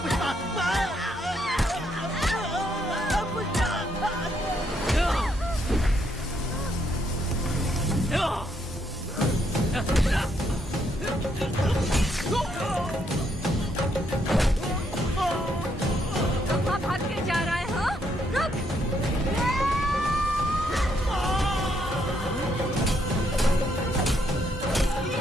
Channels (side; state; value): both; normal; correlation 0.74